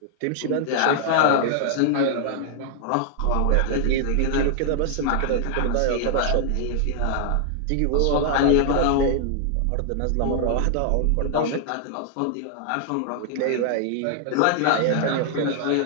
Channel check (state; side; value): different; both; correlation -0.01